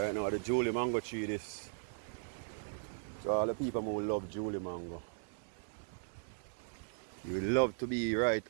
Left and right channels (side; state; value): left; silent; 53 dB below the other